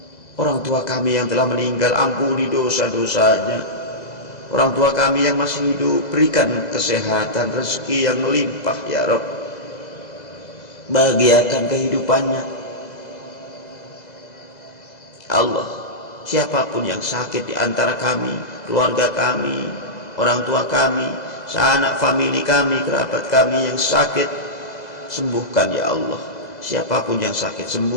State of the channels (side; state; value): right; late; 2.0 ms